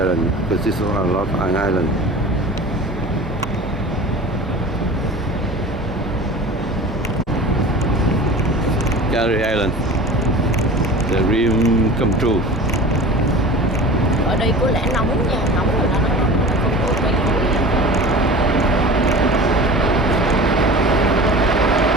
because there's a lot of islands. Canary Island. The dream come true. Ở đây có lẽ nóng nha, nóng rồi nó không có cây cối.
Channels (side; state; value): both; normal; correlation 0.38